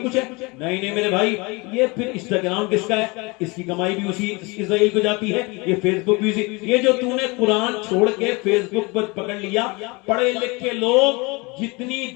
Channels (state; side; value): quieter; right; 26.7 dB